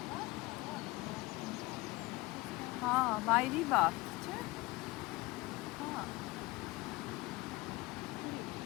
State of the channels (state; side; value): quieter; right; 21.3 dB